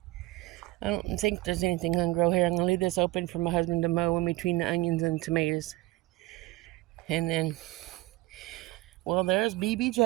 don't think there's anything going to grow here. I'm going to leave this open for my husband to mow in between the onions and tomatoes. And then, well, there's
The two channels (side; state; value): left; quieter; 18.8 dB